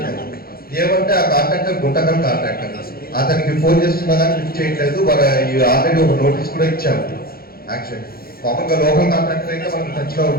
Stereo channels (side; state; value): right; late; 0.44 ms